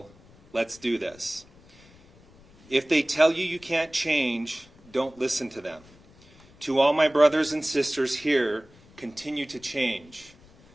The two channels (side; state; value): left; noise; rumble, 26 dB below the sound